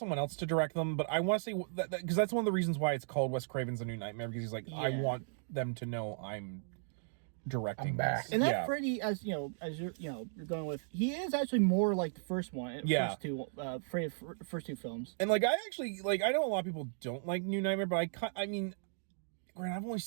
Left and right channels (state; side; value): silent; left; digital silence